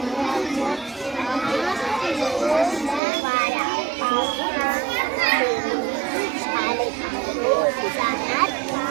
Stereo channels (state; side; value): drops out; left; at 3.0 s